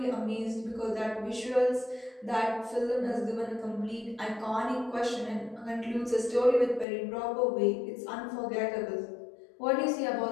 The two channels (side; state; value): right; drops out; at 6.9 s